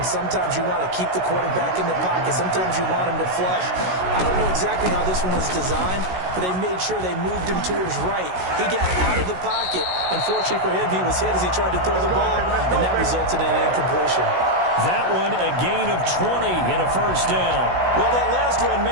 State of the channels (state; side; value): late; left; 16 ms